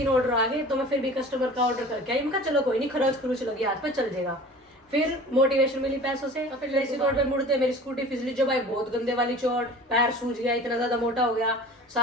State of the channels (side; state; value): both; normal; correlation 0.42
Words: ऑर्डर आ गए। तो मैं फिर भी कस्टमर का ऑर्डर करके आई, मैं कहा चलो कोई नहीं, खरोच लगी हाथ पे, चल जाएगा। फिर मोटिवेशन मिली पैसों से। फिर जैसे रोड पे मुड़ते मेरी स्कूटी फिसली, जो भाई बहुत गंदे वाली चोट, पैर सूज गया, इतना ज्यादा मोटा हो गया,